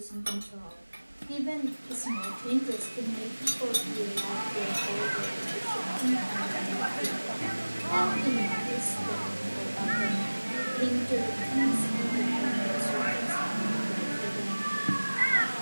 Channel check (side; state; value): both; inverted; correlation -1.00